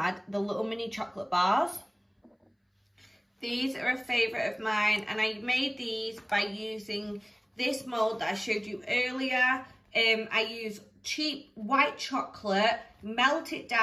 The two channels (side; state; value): both; identical; correlation 1.00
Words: the little mini chocolate bars. These are a favourite of mine, and I made these by using this mould that I showed you earlier. I use cheap white chocolate, melt it